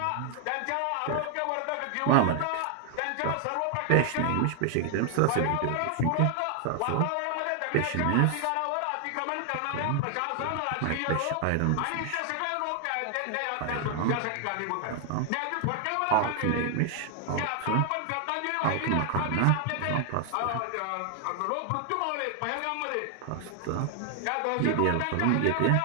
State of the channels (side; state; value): both; different; correlation 0.00